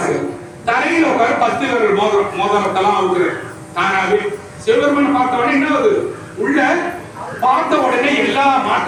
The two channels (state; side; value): identical; both; correlation 1.00